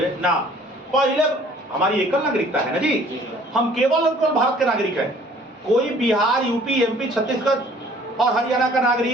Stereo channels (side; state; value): both; normal; correlation 0.55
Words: ना, पहले हमारी एकल नागरिकता है ना जी, हम केवल और केवल भारत के नागरिक हैं। कोई बिहार, यूपी, एमपी, छत्तीसगढ़ और हरियाणा का